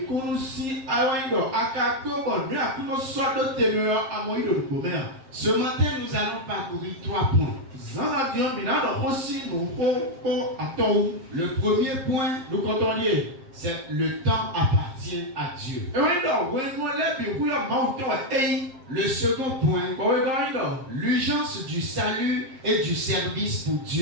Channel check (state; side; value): late; left; 7.6 ms